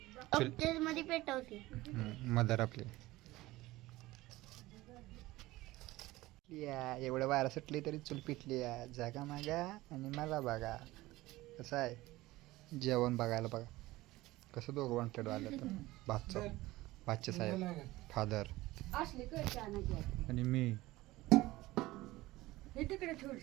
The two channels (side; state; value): left; quieter; 18.4 dB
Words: मध्ये पेटवते मदर आपली. या एवढं वारा सुटली तरी चूल पिटली या. जागा मागा आणि मला बघा कसं आहे जेवण बघायला. बघा कसं दोघं वॉन्टेड आलं तर भाचे साहेब, फादर आणि मी.